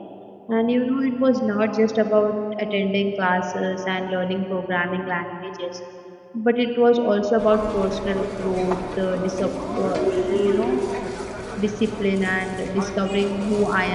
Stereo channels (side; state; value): both; identical; correlation 1.00